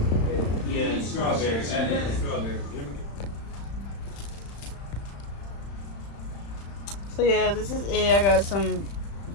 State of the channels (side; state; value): right; late; 35 ms